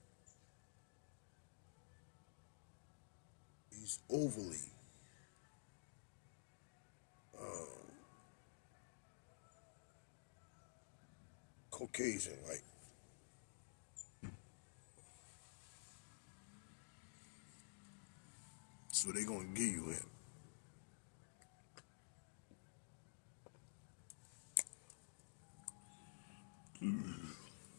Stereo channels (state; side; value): silent; right; digital silence